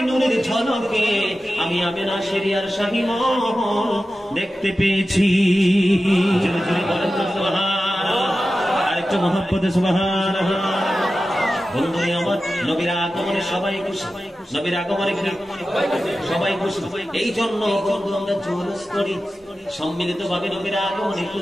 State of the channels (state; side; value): normal; both; correlation 0.94